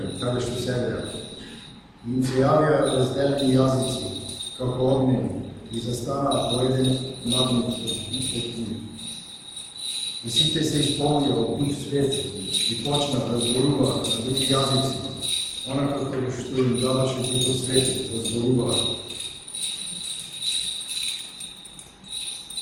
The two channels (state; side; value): identical; both; correlation 1.00